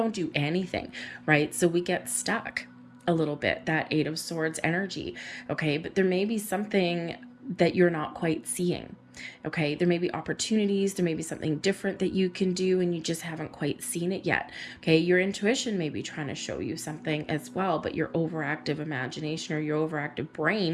do anything, right? So we get stuck a little bit, that Eight of Swords energy. Okay, but there may be something that you're not quite seeing. Okay, there may be opportunities, there may be something different that you can do and you just haven't quite seen it yet. Okay, your intuition may be trying to show you something as well, but your overactive imagination or your overactive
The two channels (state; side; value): identical; both; correlation 1.00